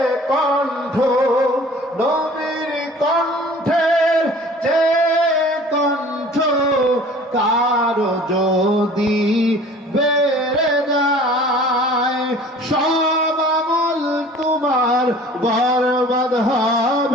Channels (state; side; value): normal; both; correlation 0.47